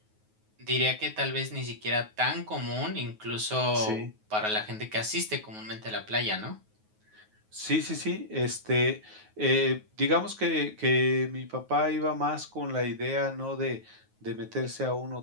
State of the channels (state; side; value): late; left; 9.4 ms